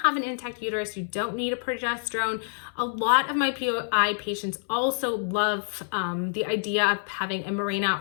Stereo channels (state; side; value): silent; right; 60 dB below the other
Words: an intact uterus, you don't need a progesterone. A lot of my POI patients also love the idea of having a Mirena